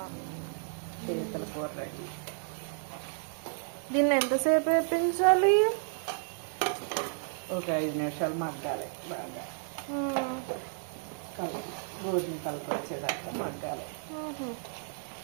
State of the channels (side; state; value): left; silent; digital silence